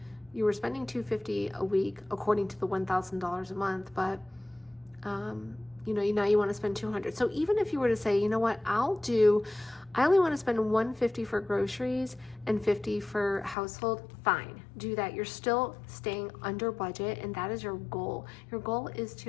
you were spending $250 a week according to the $1,000 a month, but now you want to spend $200. So even if you were to say, you know what, I only want to spend $150 for groceries and $50 for household, fine, do that. You're still staying under budget, and that is your goal. Your goal is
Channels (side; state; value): right; drops out; at 13.6 s